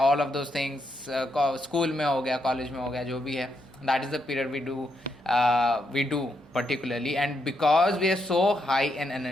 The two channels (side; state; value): both; normal; correlation 0.80